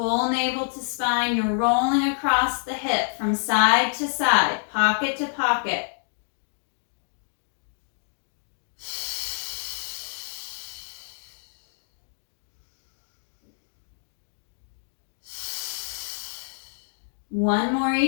navel to spine. You're rolling across the hip from side to side, pocket to pocket. One more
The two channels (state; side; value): silent; right; digital silence